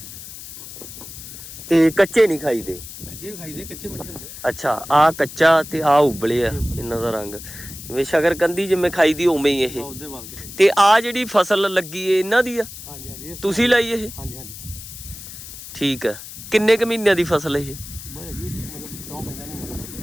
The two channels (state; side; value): noise; left; hiss, 13 dB below the sound